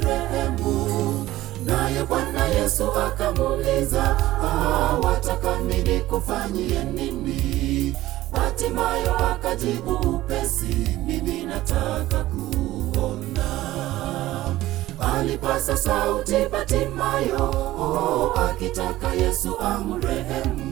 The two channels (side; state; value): left; quieter; 16.0 dB